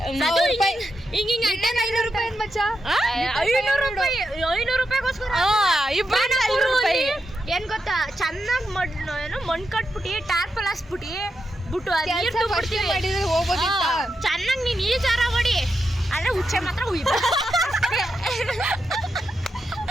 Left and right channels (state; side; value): normal; both; correlation 0.86